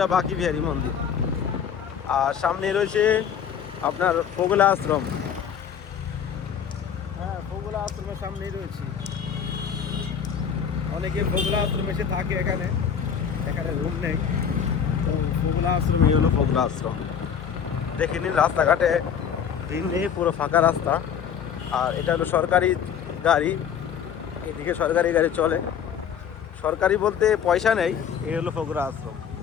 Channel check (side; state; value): right; quieter; 7.9 dB